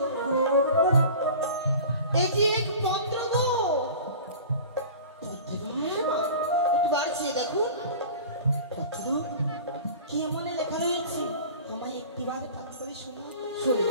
এটি এক পত্র গো। হ্যাঁ মা, একটু বাড়ছে দেখুন। পত্র? কি এমনে লেখা রয়েছে? আমায় একটিবারে পাঠ করে শোনাও।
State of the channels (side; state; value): both; inverted; correlation -0.39